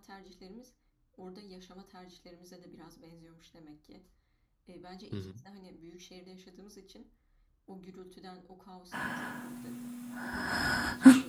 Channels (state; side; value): identical; both; correlation 1.00